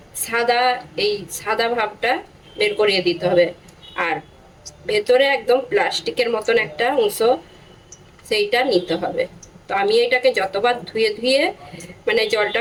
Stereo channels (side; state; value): both; identical; correlation 1.00